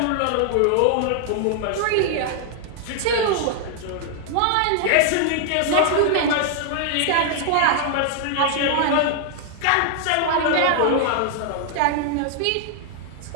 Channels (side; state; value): both; different; correlation 0.00